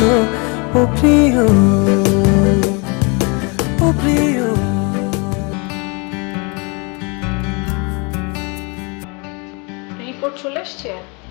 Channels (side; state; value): right; quieter; 31.6 dB